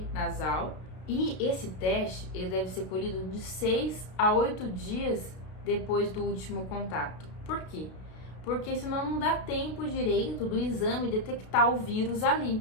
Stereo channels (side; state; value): right; late; 32 ms